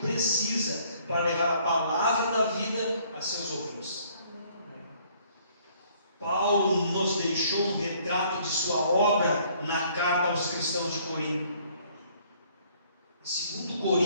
para levar a palavra da vida a seus ouvintes. Paulo nos deixou um retrato de sua obra na carta aos cristãos de Corinto. Em 2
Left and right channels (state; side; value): inverted; both; correlation -0.61